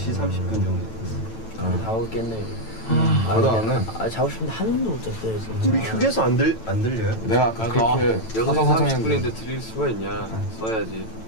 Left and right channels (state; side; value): late; right; 9.0 ms